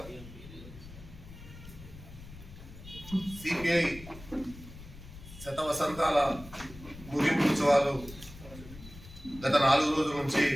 సిపిఐ శతవసంతాల ముగింపు ఉత్సవాలు గత 4 రోజుల నుంచి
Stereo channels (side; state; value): left; noise; rumble, 16 dB below the sound